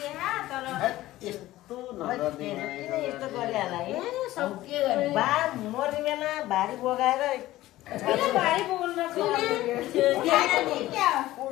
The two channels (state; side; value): quieter; right; 16.1 dB